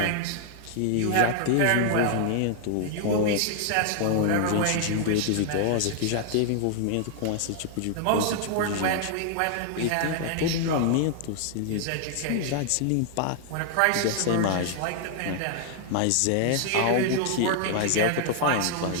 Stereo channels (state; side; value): different; both; correlation 0.00